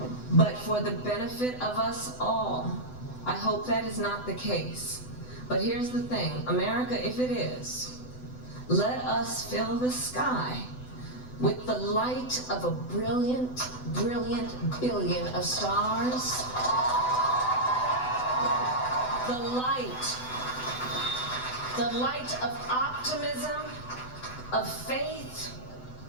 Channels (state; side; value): late; right; 8.0 ms